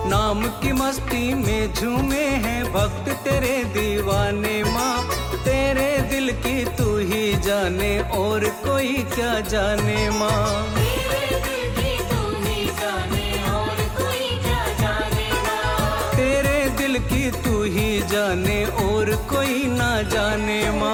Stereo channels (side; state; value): both; identical; correlation 1.00